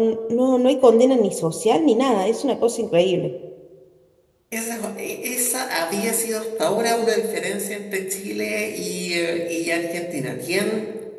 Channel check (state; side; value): identical; both; correlation 1.00